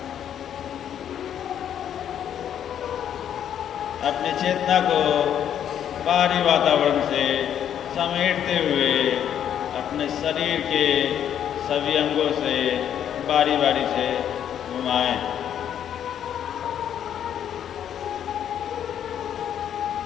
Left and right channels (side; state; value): right; quieter; 9.6 dB